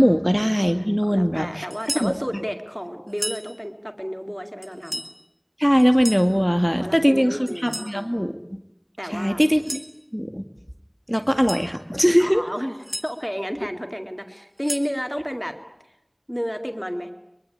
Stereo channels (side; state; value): both; identical; correlation 1.00